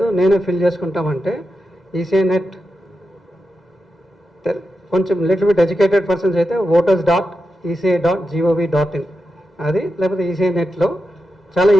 నేనే ఫిల్ చేసుకుంటామంటే ఈసీఐ నెట్ కొంచెం లిటిల్ బిట్ ఎడ్యుకేటెడ్ పర్సన్స్ అయితే voters.eci.gov.in అది, లేకపోతే ఈసీఐ నెట్లో చాలా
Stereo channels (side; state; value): both; normal; correlation 0.88